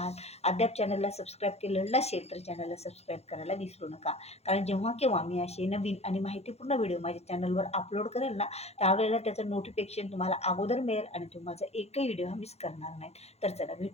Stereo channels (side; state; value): right; late; 0.31 ms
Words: अद्याप चॅनलला सबस्क्राईब केलेलं नसेल तर चॅनलला सबस्क्राईब करायला विसरू नका. कारण जेव्हा केव्हा मी असे नवीन आणि माहितीपूर्ण व्हिडिओ माझ्या चॅनलवर अपलोड करेल ना त्यावेळेला त्याचं नोटिफिकेशन तुम्हाला अगोदर मिळेल आणि तुम्ही माझा एकही व्हिडिओ मिस करणार नाही. तर चला